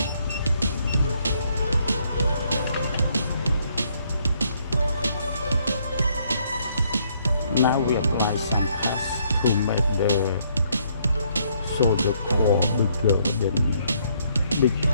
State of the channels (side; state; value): both; inverted; correlation -0.70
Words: Now we apply some paste to make the solder core bigger than